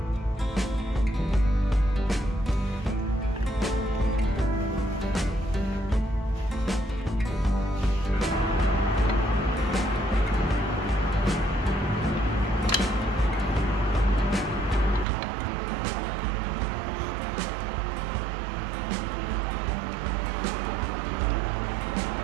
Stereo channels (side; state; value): left; drops out; at 15.1 s